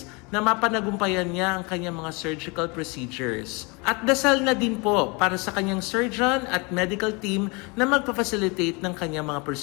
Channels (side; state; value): right; quieter; 29.1 dB